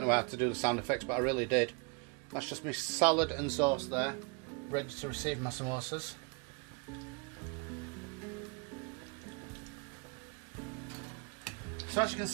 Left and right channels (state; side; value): quieter; left; 33.4 dB